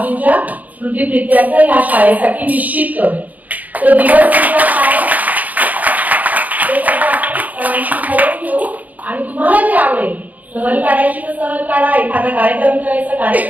स्मृतिप्रित्यर्थ या शाळेसाठी निश्चित करू। तो दिवस काय ते सगळं आपण ठरवून घेऊ आणि तुम्हाला जे आवडेल सहल काढायची तर सहल काढा, एखादा कार्यक्रम करायचा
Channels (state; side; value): late; left; 0.079 ms